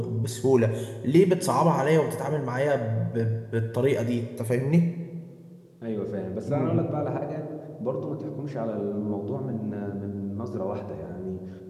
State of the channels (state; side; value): identical; both; correlation 1.00